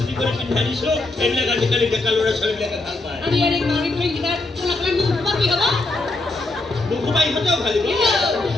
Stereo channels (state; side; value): quieter; right; 3.0 dB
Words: কৰে পিন্ধা দিছো এইবিলাক আজিকালি ডেকা ল'ৰা ছোৱালীবিলাকে ভাল পায় নুঘুমাই ইহঁতেও ভালিব